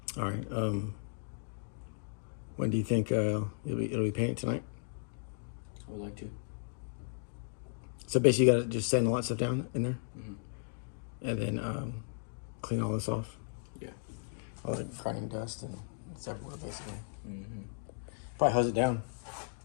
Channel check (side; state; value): right; silent; digital silence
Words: All right. When do you think it'll be painted tonight? I would like to. So basically, you gotta just sand a lot of stuff down in there, and then clean all this off. Yeah. All the grinding dust and it's everywhere basically. Probably hose it down.